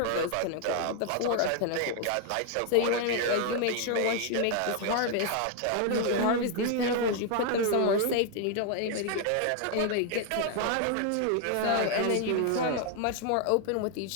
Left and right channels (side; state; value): both; different; correlation 0.01